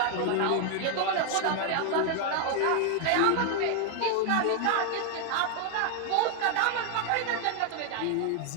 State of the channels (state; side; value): different; both; correlation 0.00